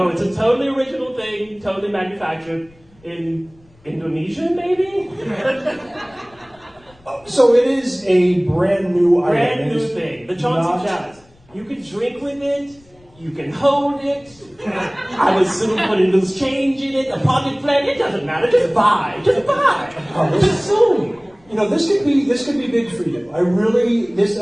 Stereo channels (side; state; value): left; noise; rumble, 29 dB below the sound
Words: it's a totally original thing, totally manufactured in Indonesia, maybe? So it is a brand new item. Brand new thing. The Chauncey Chalice. You can drink with it. You can hold it. I would soon put a loose change in it, a pocket plant. It doesn't matter. Just buy. Just buy. Just soon. You know, this could be big for you. This